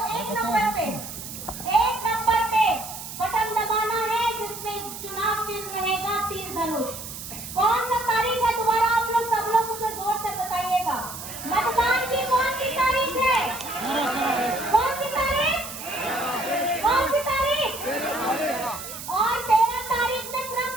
एक नंबर पे बटन दबाना है जिसमें चुनाव चिन्ह रहेगा तीर धनुष। कौन सा तारीख है दोबारा आप लोग सब लोग मुझे जोर से बताइएगा। मतदान की कौन सी तारीख है? कौन सी तारीख? कौन सी तारीख? और 13 तारीख में क्रम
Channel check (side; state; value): right; noise; hiss, 10 dB below the sound